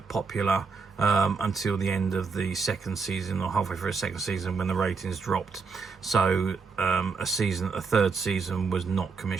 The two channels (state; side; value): quieter; left; 5.0 dB